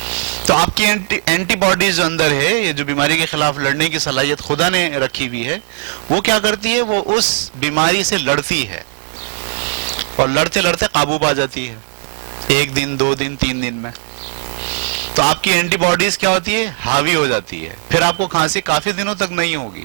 تو آپ کی اینٹی باڈیز جو اندر ہے، یہ جو بیماری کے خلاف لڑنے کی صلاحیت خدا نے رکھی ہوئی ہے، وہ کیا کرتی ہے، وہ اس بیماری سے لڑتی ہے اور لڑتے لڑتے قابو پا جاتی ہے، 1 دن 2 دن 3 دن میں. تو آپ کی اینٹی باڈیز کیا ہوتی ہے، حاوی ہو جاتی ہے. پھر آپ کو کھانسی کافی دنوں تک نہیں ہوگی،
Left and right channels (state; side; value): silent; left; 60 dB below the other